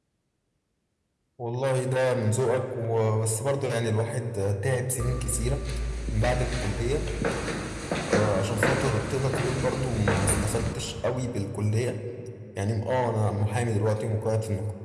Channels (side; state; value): both; identical; correlation 1.00